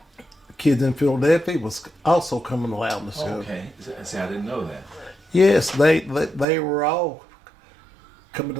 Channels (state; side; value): drops out; left; at 6.5 s